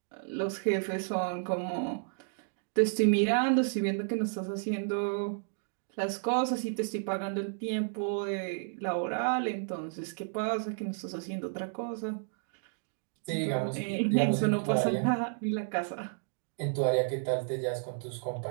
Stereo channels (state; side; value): silent; left; digital silence